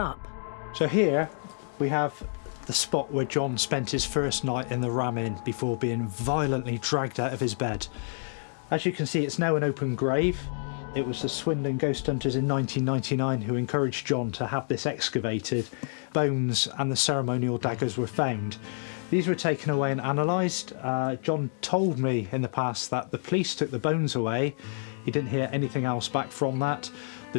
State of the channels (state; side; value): silent; right; digital silence